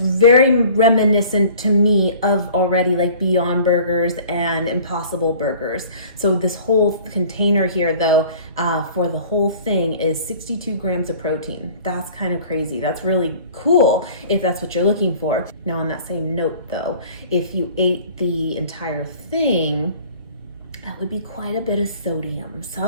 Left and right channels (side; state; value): both; inverted; correlation -0.48